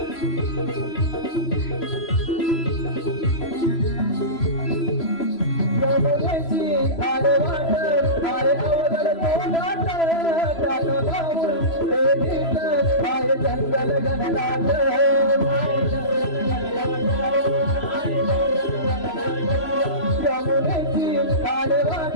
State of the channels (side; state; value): right; late; 3.0 ms